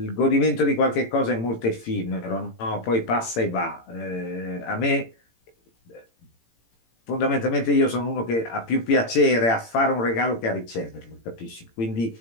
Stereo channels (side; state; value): right; late; 18 ms